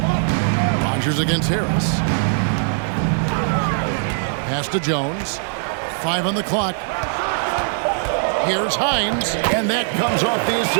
Rogers against Harris. Pass to Jones. 5 on the clock. Here's Hines. And that comes off the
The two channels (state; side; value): silent; left; digital silence